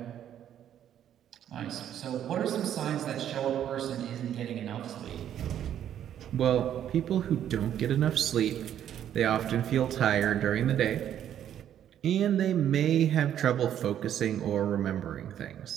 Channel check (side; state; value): left; quieter; 10.3 dB